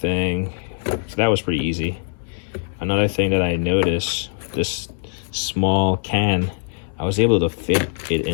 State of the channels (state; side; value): silent; right; 60 dB below the other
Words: so that was pretty easy. Another thing that I noticed, this small can, I was able to fit it